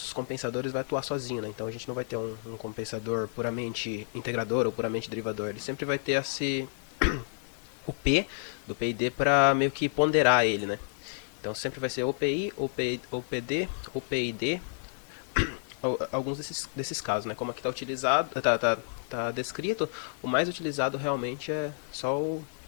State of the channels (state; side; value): silent; right; 58 dB below the other